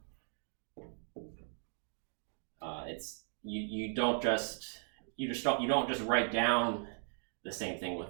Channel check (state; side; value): silent; left; 53 dB below the other